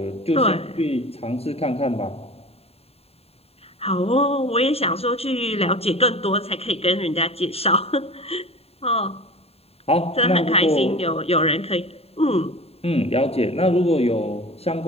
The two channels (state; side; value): late; right; 0.29 ms